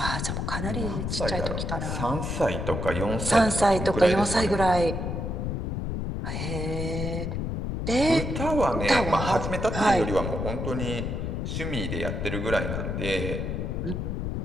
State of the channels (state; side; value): noise; left; rumble, 2 dB below the sound